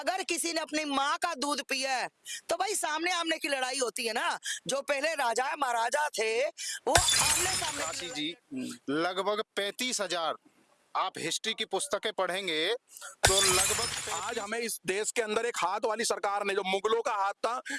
किसी ने अपनी माँ का दूध पिया है तो भाई सामने आमने की लड़ाई होती है ना। जो पहले राजा महाराजा थे वो आमने सामने की काशी लड़ाई जी, लड़ते लगभग 35,000 आप हिस्ट्री की पुस्तकें पढ़ेंगे तो लगभग आज हमें इस देश के अंदर एक हाथ वाली सरकार ने, जो मुगलों का हाथ था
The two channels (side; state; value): both; identical; correlation 1.00